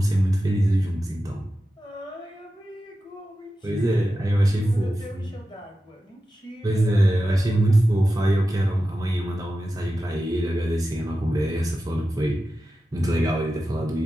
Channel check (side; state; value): both; normal; correlation 0.92